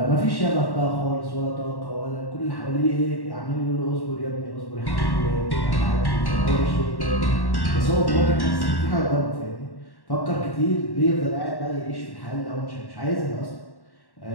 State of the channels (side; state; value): right; late; 1.1 ms